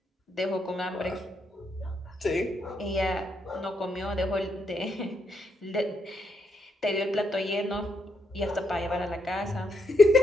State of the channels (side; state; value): both; normal; correlation 0.78